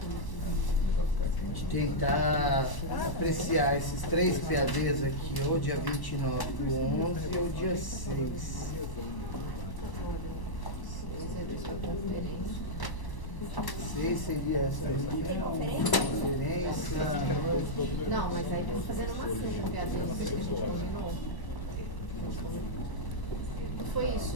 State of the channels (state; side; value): late; right; 1.1 ms